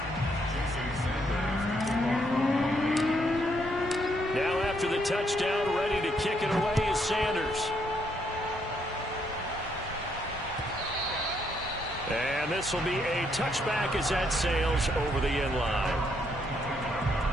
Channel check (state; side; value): normal; both; correlation 0.73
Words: Now after the touchdown, ready to kick it away is Sanders. And this will be a touchback as that sails over the end line.